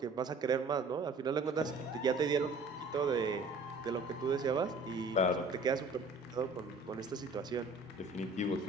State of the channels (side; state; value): left; quieter; 3.2 dB